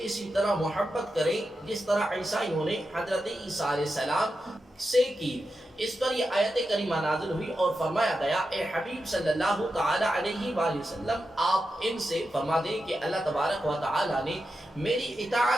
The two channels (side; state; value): both; normal; correlation 0.89